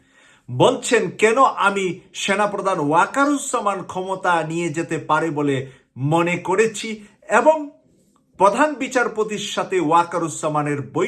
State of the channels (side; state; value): both; identical; correlation 1.00